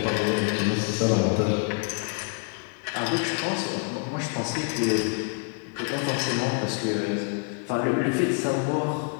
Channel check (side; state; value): right; quieter; 37.8 dB